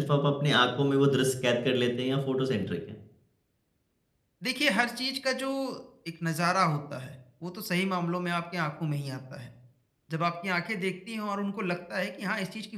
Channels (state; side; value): identical; both; correlation 1.00